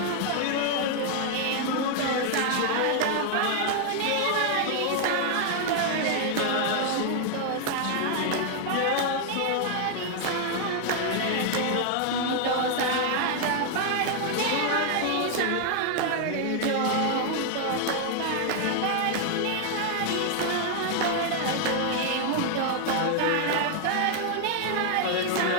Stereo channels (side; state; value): both; different; correlation 0.00